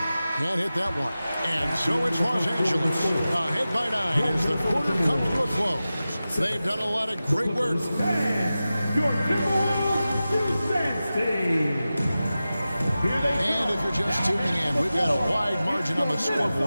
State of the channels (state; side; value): inverted; both; correlation -0.95